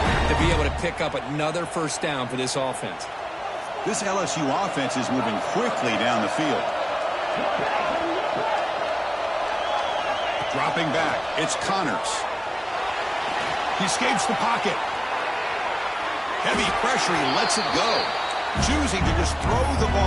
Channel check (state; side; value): identical; both; correlation 1.00